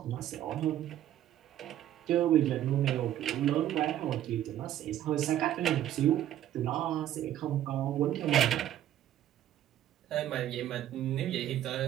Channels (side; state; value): left; quieter; 12.0 dB